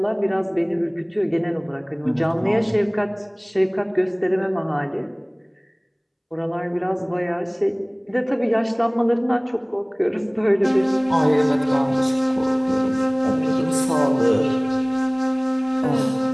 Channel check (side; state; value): both; identical; correlation 1.00